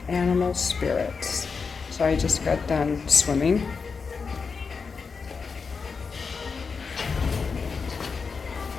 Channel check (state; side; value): quieter; right; 5.2 dB